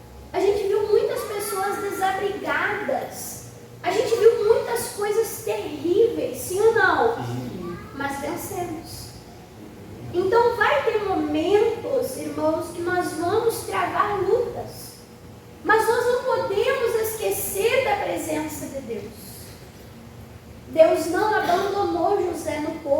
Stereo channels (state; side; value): identical; both; correlation 1.00